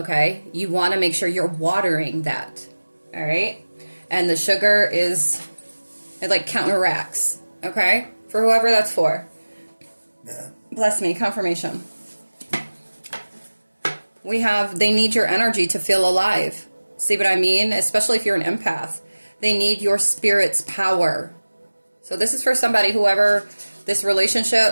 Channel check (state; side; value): inverted; both; correlation -1.00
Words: You want to make sure you're watering that, all right? And the sugar it like counteracts, okay? For whoever that's for. Yeah. Bless me, confirmation. They need your energy to feel alive. See what I mean? Especially if you're an empath. They need your spirit's power. So this is for somebody, whoever this